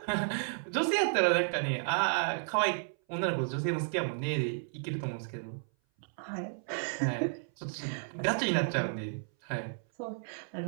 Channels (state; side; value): silent; left; 56 dB below the other